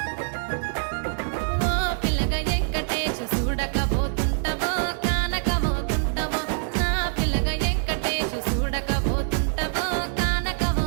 ఓ పిల్లగా వెంకటేశు చూడకపోతుంటావో కానకపోతుంటావో నా పిల్లగా వెంకటేశు చూడకపోతుంటావో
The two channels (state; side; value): silent; left; digital silence